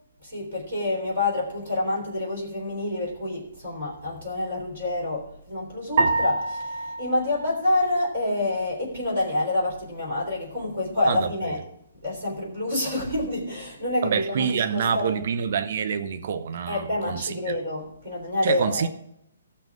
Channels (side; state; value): both; inverted; correlation -0.71